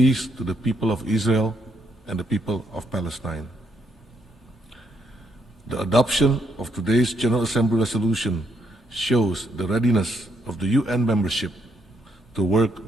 to the people of Israel and the people of Palestine. The adoption of today's General Assembly resolution shows the readiness of the UN membership to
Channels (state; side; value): normal; both; correlation 0.76